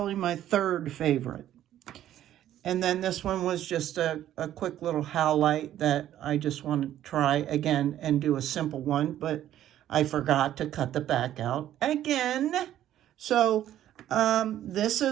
my third favorite. And then this one was just a quick little howlite that I just want to try again and do a simple one, but I forgot to cut the back out again. So this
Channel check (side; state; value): left; quieter; 12.0 dB